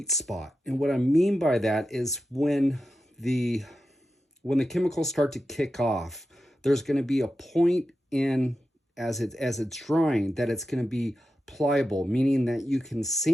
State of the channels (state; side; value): normal; both; correlation 0.90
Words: spot, and what I mean by that is when the chemicals start to kick off, there's going to be a point in as it's drying that it's going to be pliable, meaning that you can